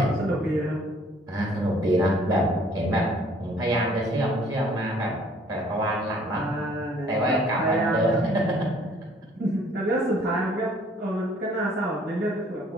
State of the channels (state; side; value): normal; both; correlation 0.59